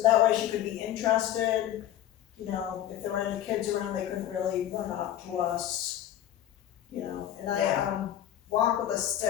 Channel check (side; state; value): right; quieter; 11.8 dB